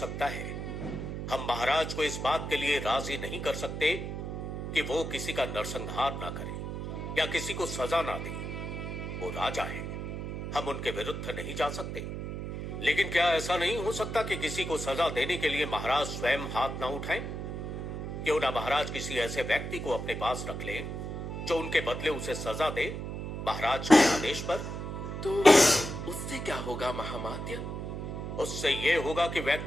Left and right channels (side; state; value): right; noise; hum, 5 dB below the sound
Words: है, हम महाराज को इस बात के लिए राजी नहीं कर सकते कि वो किसी का नरसंहार ना करे या किसी को सजा ना दे। वो राजा है, हम उनके विरुद्ध नहीं जा सकते। लेकिन क्या ऐसा नहीं हो सकता कि किसी को सजा देने के लिए महाराज स्वयं हाथ ना उठाएं? क्यों ना महाराज किसी ऐसे व्यक्ति को अपने पास रख लें जो उनके बदले उसे सजा दे, महाराज के आदेश पर। तो उससे क्या होगा महामात्य? उससे यह होगा कि